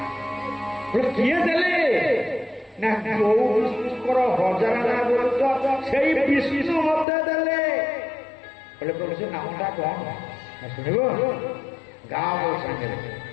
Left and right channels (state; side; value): drops out; right; at 7.1 s